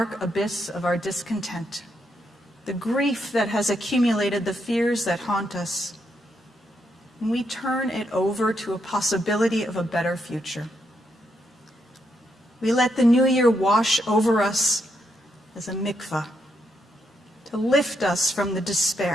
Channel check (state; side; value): normal; both; correlation 0.79